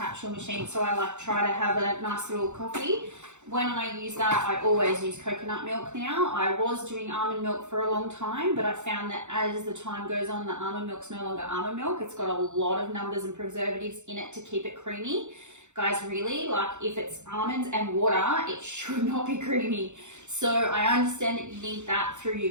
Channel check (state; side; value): late; left; 0.84 ms